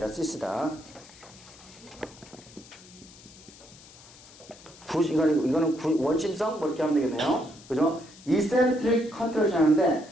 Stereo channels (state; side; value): noise; left; hiss, 21 dB below the sound